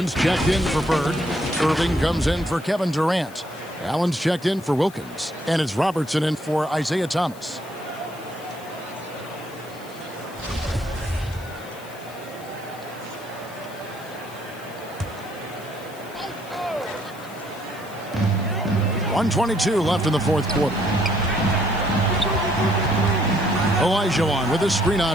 checked in for Bird. Irving comes in for Kevin Durant. Allen's checked in for Wilkins. And it's Robertson in for Isaiah Thomas. .122 left in the fourth quarter. Olajuwon with a screen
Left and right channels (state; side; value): noise; left; hiss, 21 dB below the sound